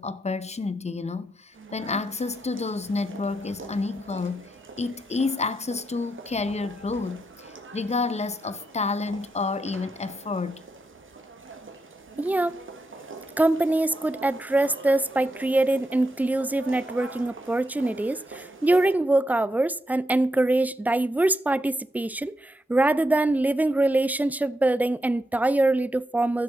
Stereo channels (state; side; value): normal; both; correlation 0.83